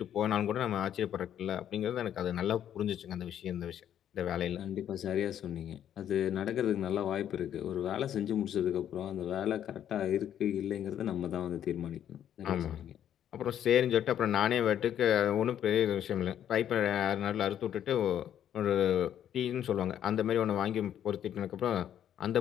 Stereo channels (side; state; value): right; quieter; 10.2 dB